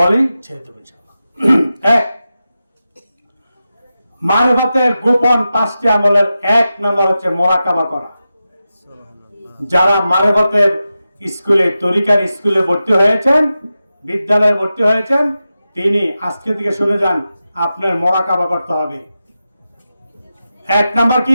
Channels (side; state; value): both; inverted; correlation -0.92